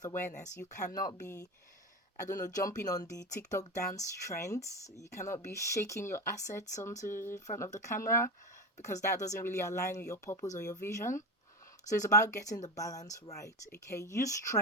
awareness, you cannot be, I don't know, jumping on the TikTok dance trends. You cannot be shaking your assets onto in front of the camera, because that doesn't really align with your purpose or your vision. So it's about getting the balance right. Okay, use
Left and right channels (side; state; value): both; normal; correlation 0.20